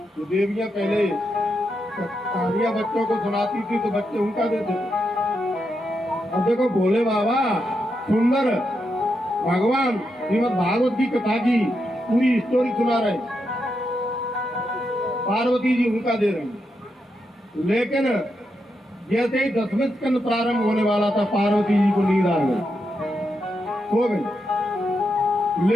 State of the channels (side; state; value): both; normal; correlation 0.84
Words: तो देवियां पहले कहानियां बच्चों को सुनाती थी तो बच्चे उनका देते थे। अब देखो भोले बाबा सुंदर भगवान श्रीमद भागवत की कथा की पूरी स्टोरी सुना रहे, पार्वती जी उनका दे रहे। लेकिन जैसे ही 10वें स्कंद प्रारंभ होने वाला था, पार्वती जी को नींद आ गई, सो गई।